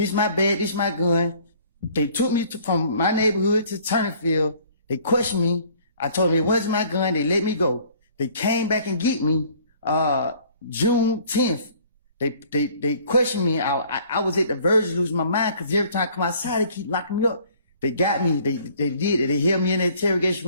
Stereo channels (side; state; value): both; inverted; correlation -0.55